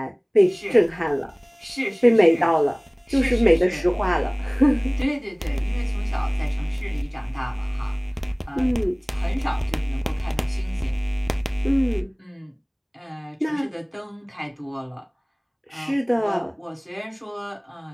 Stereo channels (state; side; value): identical; both; correlation 1.00